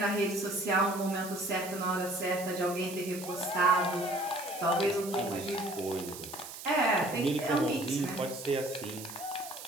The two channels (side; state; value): right; noise; hiss, 12 dB below the sound